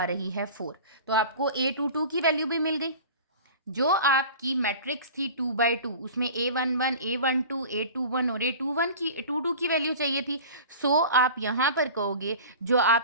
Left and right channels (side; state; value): both; inverted; correlation -0.38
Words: रही है 4। तो आपको A22 की वैल्यू भी मिल गई। जो आपकी मैट्रिक्स थी 2/2, उसमें A11, A12, A21 और A22 की वैल्यू चाहिए थी। सो आप यहाँ पर कहोगे जो